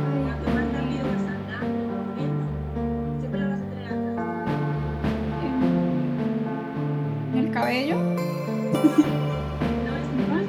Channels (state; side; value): identical; both; correlation 1.00